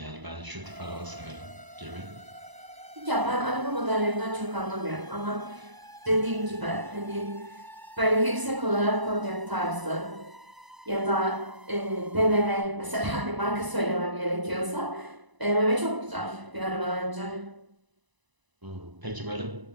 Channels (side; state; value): left; late; 1.0 ms